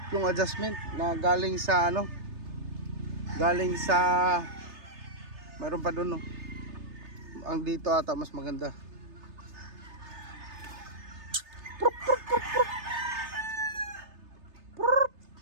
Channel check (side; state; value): left; late; 3.3 ms